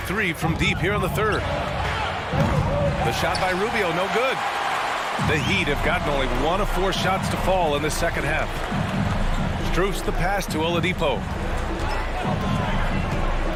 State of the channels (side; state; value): both; identical; correlation 1.00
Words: 3 from deep here in the third. The shot by Rubio, no good. The Heat have gotten only 1 of 4 shots to fall in this second half. Strus the pass to Oladipo.